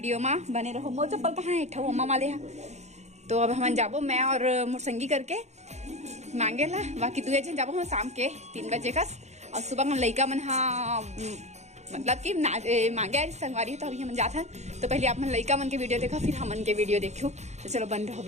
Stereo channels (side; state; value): left; late; 0.33 ms